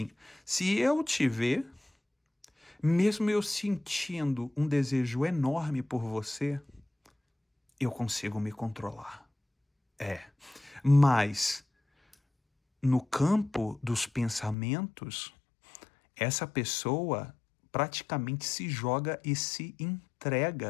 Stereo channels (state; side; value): drops out; right; at 14.6 s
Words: se eu te ver, mesmo eu sentindo um desejo enorme por você, eu consigo me controlar. Mas no campo dos pensamentos, essa pessoa praticamente se joga e se